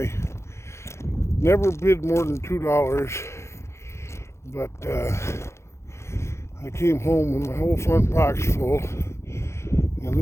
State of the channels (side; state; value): right; late; 0.13 ms